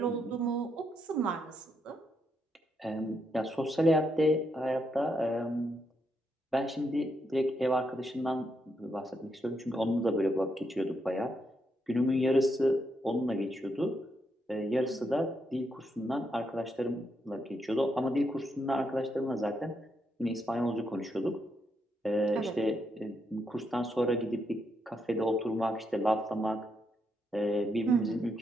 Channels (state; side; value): normal; both; correlation 0.79